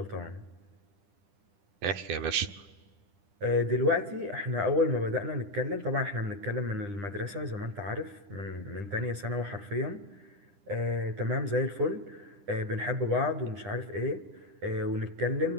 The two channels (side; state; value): left; late; 10 ms